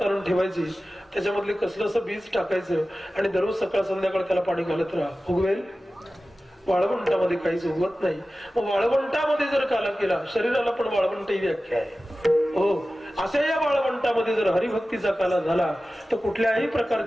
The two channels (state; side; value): normal; both; correlation 0.95